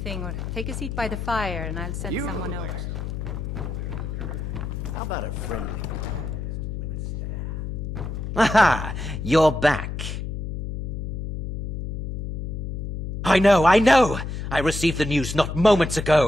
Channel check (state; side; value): noise; left; hum, 5 dB below the sound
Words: or take a seat by the fire and I'll send someone over. How about a friendly... Aha! You're back. I know! I received the news not moments